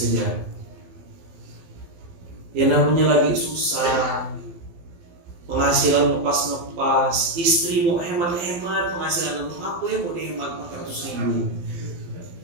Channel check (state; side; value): late; left; 12 ms